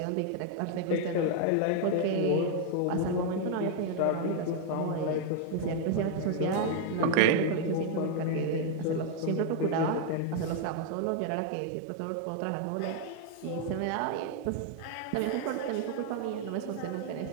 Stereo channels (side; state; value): both; different; correlation 0.00